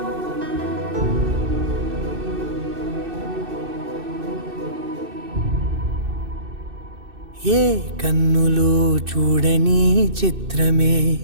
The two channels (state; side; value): late; left; 2.6 ms